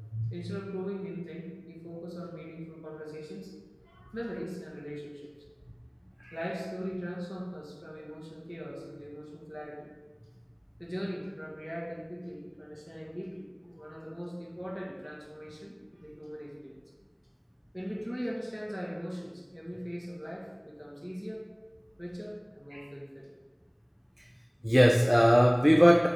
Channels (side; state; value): both; identical; correlation 1.00